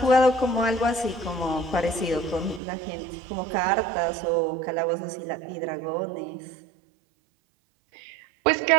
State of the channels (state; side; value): drops out; left; at 2.6 s